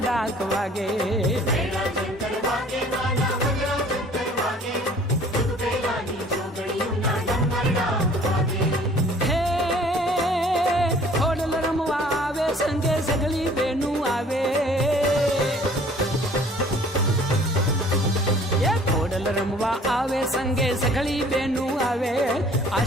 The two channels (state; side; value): normal; both; correlation 0.53